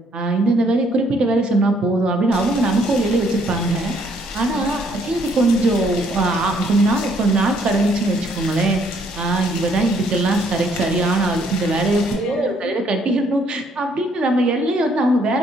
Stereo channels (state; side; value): normal; both; correlation 0.67